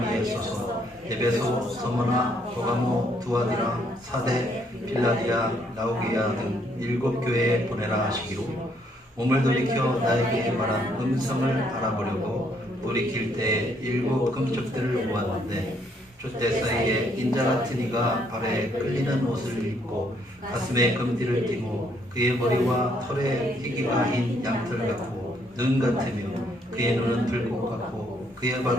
써서 에베소, 서머나, 버가모, 두아디라, 사대, 필라디아, 라오게아 등 7 교회에 보내라 하시기로 몸을 돌이켜 나에게 말한 음성을 알아보려고 돌이킬 때 7 금쪽들을 보았는데 촛대 사이에 인자 같은 이가 발에 끌리는 옷을 입고 가슴에 금띠를 띠고 그의 머리와 털에 희기가 흰 양털 같고 눈 같으며 그의 눈은 불꽃 같고 그의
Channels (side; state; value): both; normal; correlation 0.70